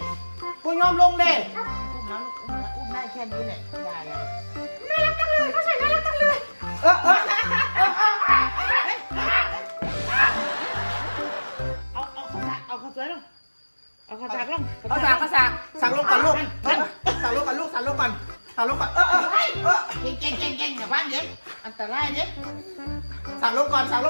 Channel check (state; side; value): inverted; both; correlation -1.00